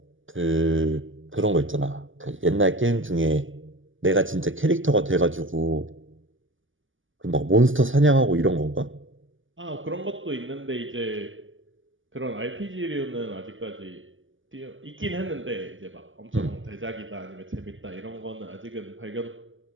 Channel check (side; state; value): left; late; 0.57 ms